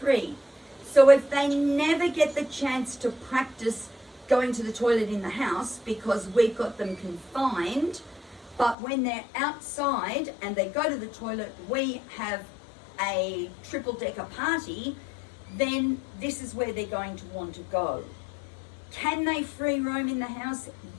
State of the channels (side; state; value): right; drops out; at 8.8 s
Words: So if they never get the chance to practice going to the toilet in the house because we've got them confined, but when they're outside and they go to the toilet, we have a triple-decker party, then this is where they're going to want to go. Can they free roam in the house?